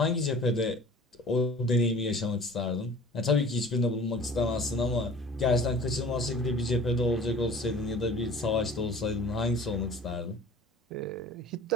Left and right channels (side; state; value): both; normal; correlation 0.45